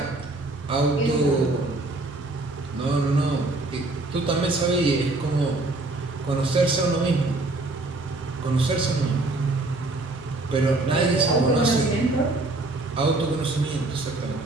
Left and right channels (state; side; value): quieter; left; 3.0 dB